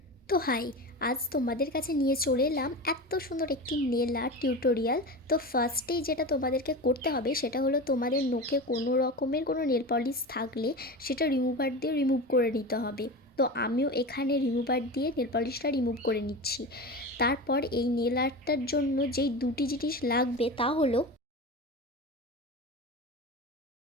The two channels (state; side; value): normal; both; correlation 0.27